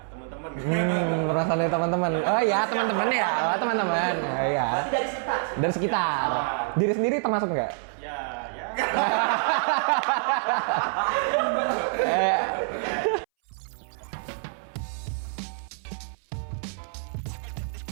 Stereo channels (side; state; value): left; silent; 61 dB below the other